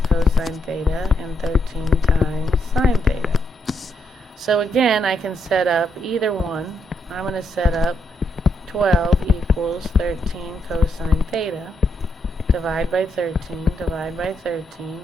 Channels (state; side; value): normal; both; correlation 0.78